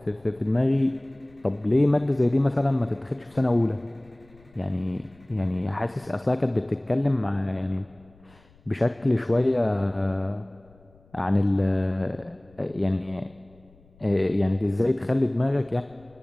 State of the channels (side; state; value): left; noise; rumble, 28 dB below the sound